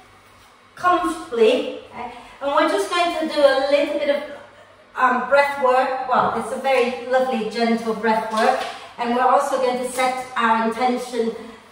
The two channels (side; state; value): both; identical; correlation 1.00